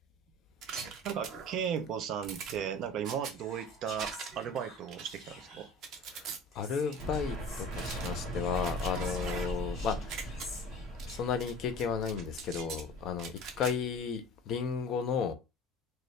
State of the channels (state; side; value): normal; both; correlation 0.40